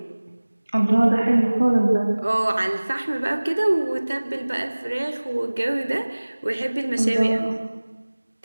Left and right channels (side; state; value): both; inverted; correlation -1.00